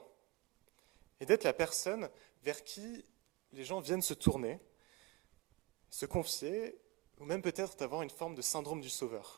et d'être la personne vers qui les gens viennent se tourner, se confier, ou même peut-être d'avoir une forme de syndrome du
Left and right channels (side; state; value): left; quieter; 21.4 dB